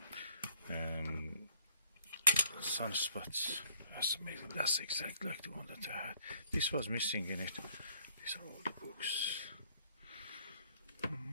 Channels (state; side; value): inverted; both; correlation -0.63